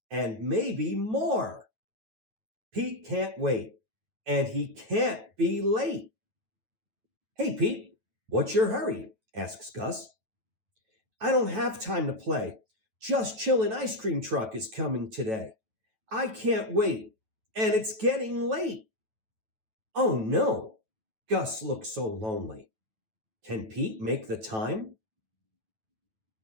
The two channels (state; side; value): late; left; 9.2 ms